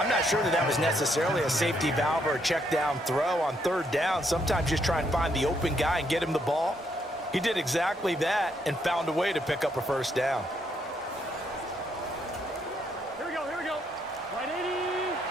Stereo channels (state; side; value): normal; both; correlation 0.74